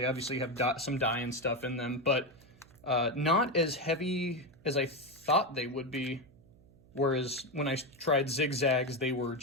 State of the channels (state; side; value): noise; right; hum, 26 dB below the sound